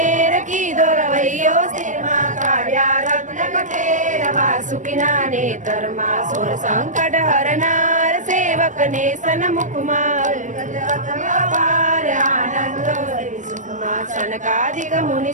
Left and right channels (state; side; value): late; left; 0.36 ms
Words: की दोरवैयो स्थिर माँ काव्या रत्न कठेर वासुकिना नेतर माँ सुर संकट हरनार सेवक ने सन्मुख माँ आनंद सुख माँ सनकादिक मुनि